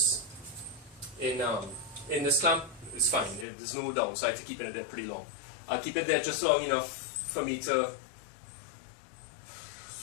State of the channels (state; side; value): drops out; right; at 3.5 s